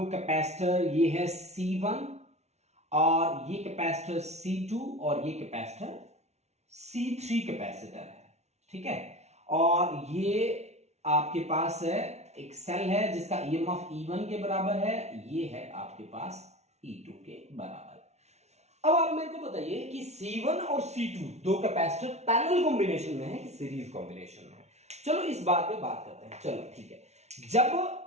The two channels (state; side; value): late; left; 0.32 ms